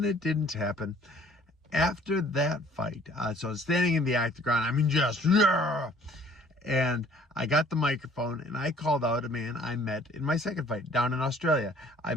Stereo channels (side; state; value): both; normal; correlation 0.56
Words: it didn't happen. After that fight, so I was standing in the octagon. I mean, just, yeah. And I got the microphone and I called out a man I met in my second fight down in Australia. I